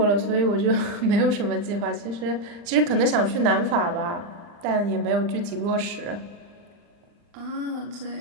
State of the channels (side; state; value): left; late; 40 ms